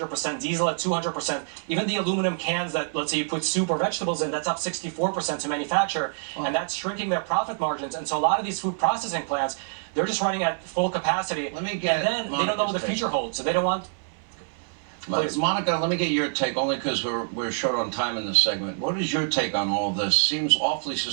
diesel at 200%, even the aluminum cans that, let's say, you put soup or vegetables in, that's up 64% to manufacture, and that's shrinking their profit margins. And so a lot of these food processing plants, they're just running at full capacity, and then they don't know what the future holds, so they don't want... Please. Monica, let me get your take, only because we're short on time in this segment. What is your take on all of this? Seems awfully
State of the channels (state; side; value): silent; left; digital silence